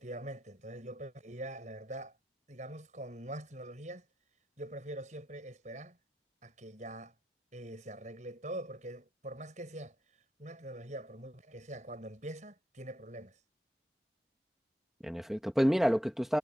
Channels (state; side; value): normal; both; correlation 0.86